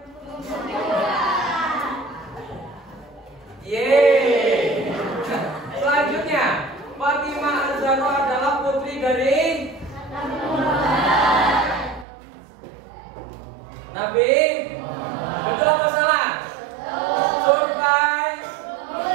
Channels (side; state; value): left; drops out; at 12.1 s